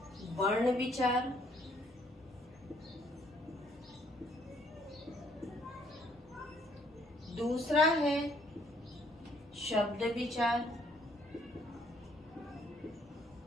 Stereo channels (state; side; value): normal; both; correlation 0.66